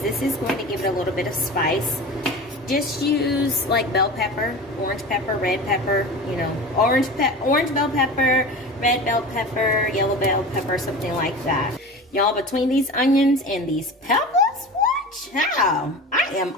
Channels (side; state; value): both; normal; correlation 0.32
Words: this is going to give it a little bit of spice, just use like bell pepper, orange pepper, red pepper, you know, orange bell pepper, red bell pepper, yellow bell pepper, something like that. Y'all, between these onions and these peppers, what? Child, I am